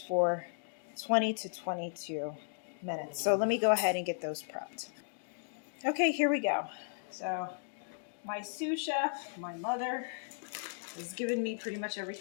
20 to 22 minutes. So let me go ahead and get those prepped. Okay, here we go. So my sous chef, my mother, has given me pretty much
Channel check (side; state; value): right; silent; digital silence